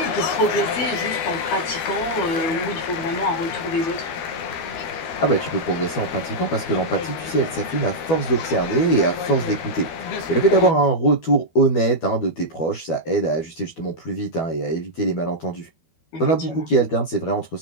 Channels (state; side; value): late; right; 13 ms